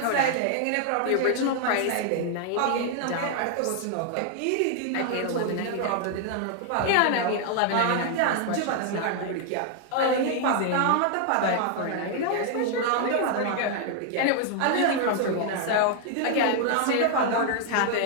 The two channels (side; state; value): both; different; correlation 0.00